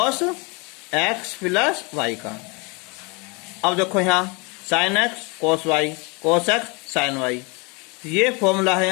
x प्लस y का। अब देखो यहाँ sin x cos y cos x sin y, ये फॉर्मूला है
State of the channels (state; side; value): quieter; right; 29.5 dB